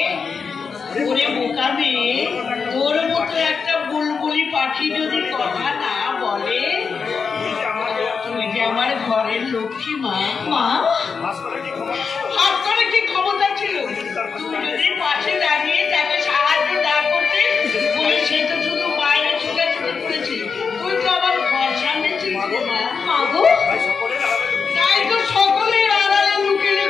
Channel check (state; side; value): quieter; right; 5.5 dB